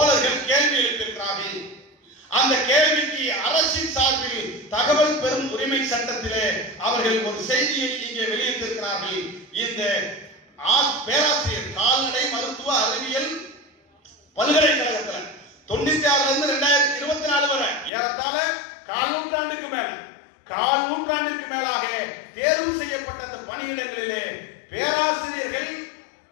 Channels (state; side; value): drops out; right; at 17.9 s